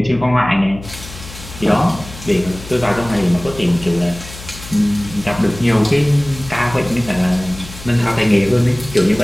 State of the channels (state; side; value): noise; left; hum, 15 dB below the sound